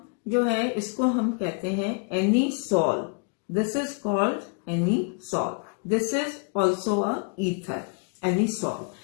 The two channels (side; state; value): right; quieter; 38.3 dB